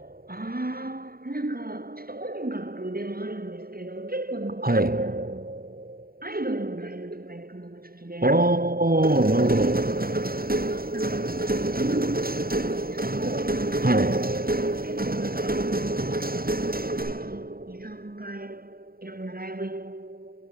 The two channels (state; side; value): late; left; 0.43 ms